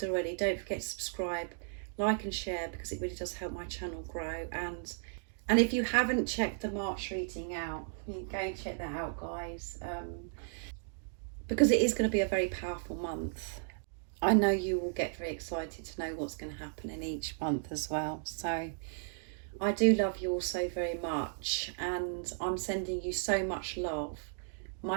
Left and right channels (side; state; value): left; silent; digital silence